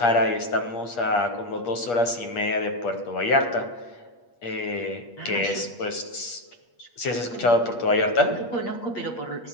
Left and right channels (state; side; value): late; right; 8.5 ms